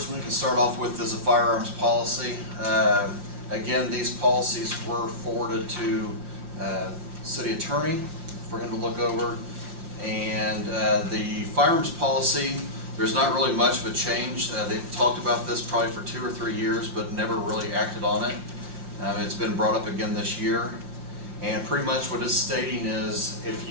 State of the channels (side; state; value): left; late; 5.8 ms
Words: one we can start off with is a firearms policy. Again, these policies were forwarded to city attorney for him to look over. And the firearms policy, there's not really much of a change. They've talked about this probably for 2 or 3 years, but never really acted on it. It's been brought up again this year. And pretty much what it's stating is if